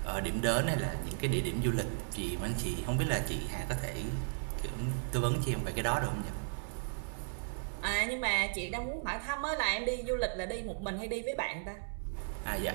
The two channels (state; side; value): silent; left; digital silence